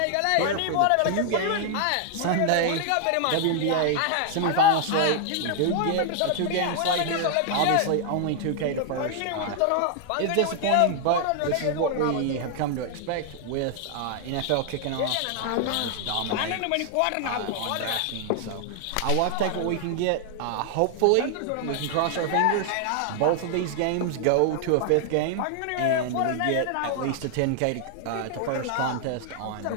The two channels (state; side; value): different; both; correlation 0.00